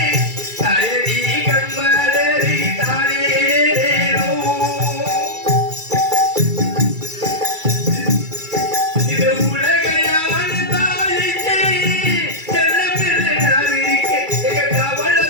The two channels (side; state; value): left; late; 2.3 ms